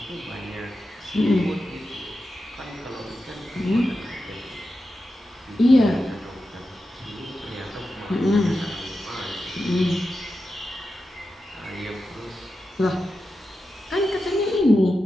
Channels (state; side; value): normal; both; correlation 0.90